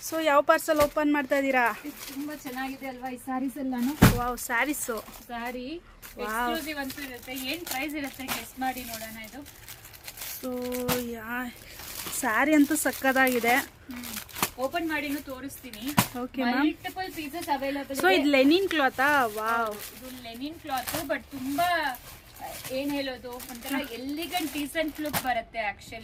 So ಯಾವ parcel open ಮಾಡ್ತಾ ಇದ್ದೀರಾ? ತುಂಬಾ ಚೆನ್ನಾಗಿದೆ ಅಲ್ವಾ ಈ ಸ್ಯಾರೀಸ್ ಎಲ್ಲಾನು? ವಾವ್, ಸ್ಯಾರೀಸು. ಸ್ಯಾರಿ ಎಕ್ಸ್ಕ್ಲೂಸಿವ್ ಅಂತೂ ಇರುತ್ತೆ. ಏನು ಪ್ರೈಸ್ ಇರುತ್ತೆ ಗೆಸ್ ಮಾಡಿ ನೋಡೋಣ. ಇದು ಸೊ ಸ್ಯಾರಿ ಅಂತೂ ಸಕ್ಕದಾಗಿದೆ. ಓಪನ್ ಮಾಡಿನೂ ತೋರಿಸ್ತೀನಿ. Okay ma'am. Multiple pieces available. So ಇದು ಲೆನಿನ್ ಕ್ಲಾತಾ? ವಾವ್, ಇದು ಲೆನಿನ್ ಕ್ಲಾತ್. ಬಟ್ ತುಂಬಾ ಏನ್ ಹೇಳೋದು, ಒಂಥರ ಎಲಿಗೆಂಟ್ ಡೀಸೆಂಟ್ ಲುಕ್ ಬರುತ್ತೆ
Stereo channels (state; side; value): identical; both; correlation 1.00